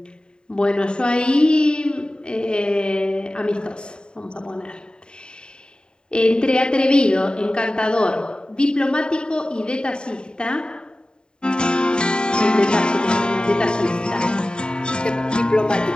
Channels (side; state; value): right; late; 0.049 ms